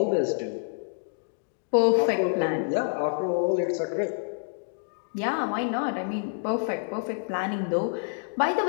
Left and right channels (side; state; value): right; silent; digital silence